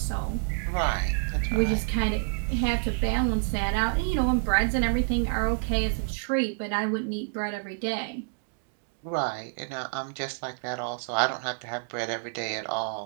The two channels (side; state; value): left; silent; digital silence